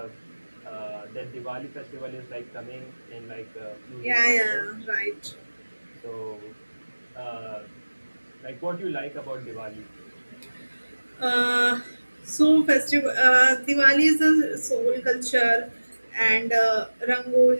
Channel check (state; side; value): inverted; both; correlation -1.00